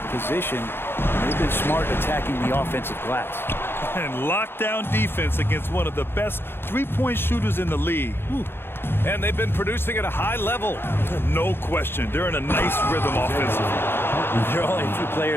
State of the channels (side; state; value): right; late; 0.11 ms